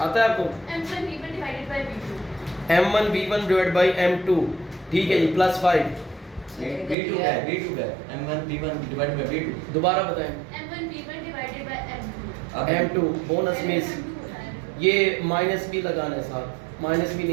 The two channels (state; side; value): drops out; left; at 7.0 s